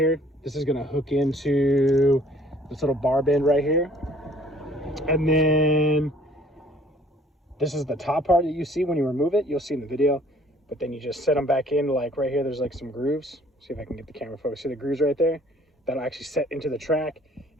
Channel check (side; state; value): both; normal; correlation 0.56